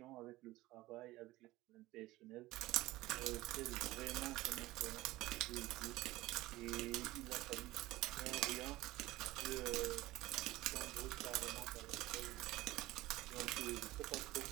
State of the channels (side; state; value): left; quieter; 18.0 dB